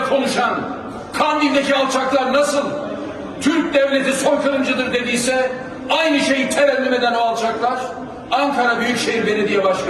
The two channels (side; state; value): both; identical; correlation 1.00